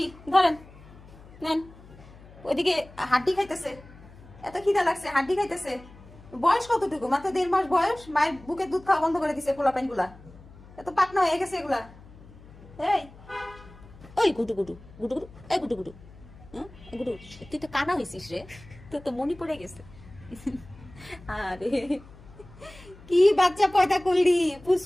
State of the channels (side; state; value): left; noise; hum, 21 dB below the sound